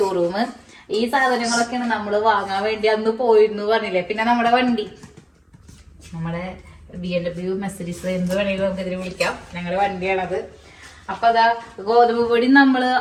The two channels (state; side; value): identical; both; correlation 1.00